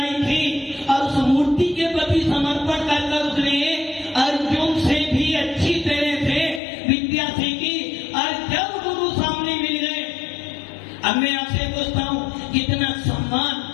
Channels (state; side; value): drops out; right; at 6.6 s